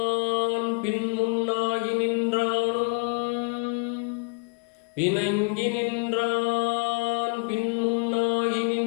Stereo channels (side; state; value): right; quieter; 30.3 dB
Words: பின் முன்னாகி நின்றானும், இணங்கி நின்றான் பின் முன்னாகி